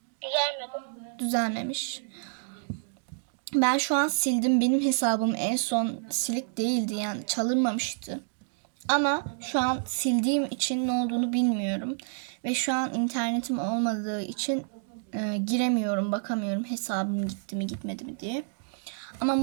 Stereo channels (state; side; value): silent; left; digital silence